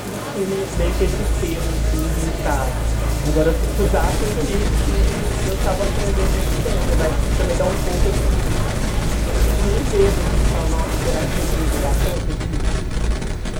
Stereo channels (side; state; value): both; identical; correlation 1.00